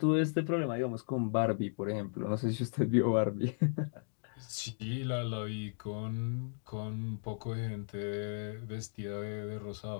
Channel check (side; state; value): right; silent; digital silence